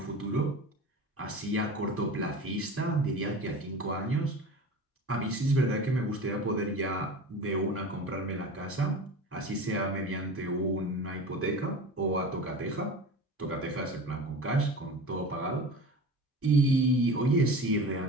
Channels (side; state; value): both; normal; correlation 0.33